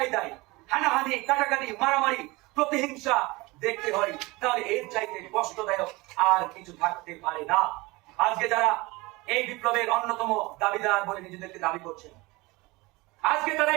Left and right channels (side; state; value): left; quieter; 22.9 dB